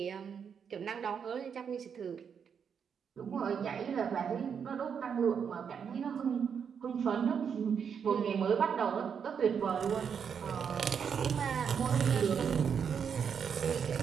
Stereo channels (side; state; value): left; quieter; 7.1 dB